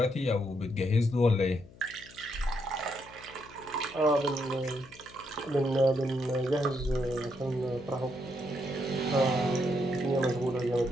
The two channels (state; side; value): noise; left; hum, 22 dB below the sound